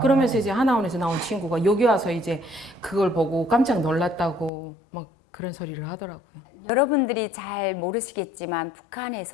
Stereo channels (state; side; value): drops out; right; at 4.5 s